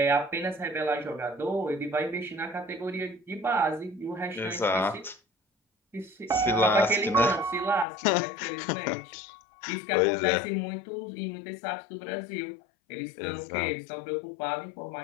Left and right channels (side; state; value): right; drops out; at 7.9 s